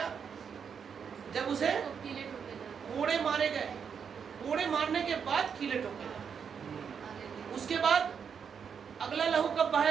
जब उसे तो कीले ठोके जाते। कोड़े मारे गए। कोड़े मारने के बाद कीले ठोके गए। हालेलुया। उसके बाद अगला लहू कब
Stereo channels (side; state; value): left; quieter; 6.9 dB